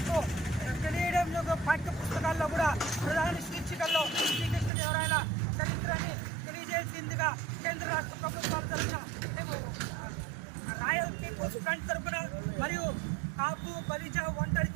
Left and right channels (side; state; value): left; drops out; at 4.7 s